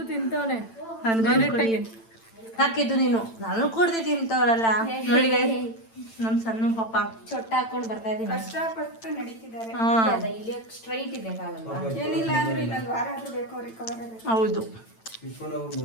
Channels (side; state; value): right; late; 8.9 ms